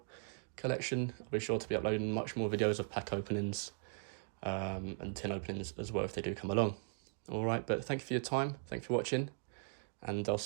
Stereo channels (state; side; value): silent; left; 52 dB below the other